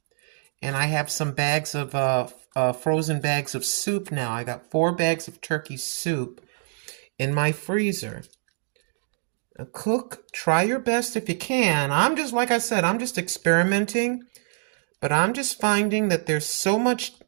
And I have some bags of frozen bags of soup now. I got 4 bags of turkey soup in my freezer. Cook, try your best if you can. Like I said, I'm just experimenting. But I'm just finding that there's so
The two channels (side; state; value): left; silent; digital silence